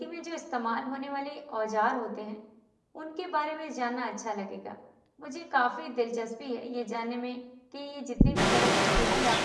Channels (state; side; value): identical; both; correlation 1.00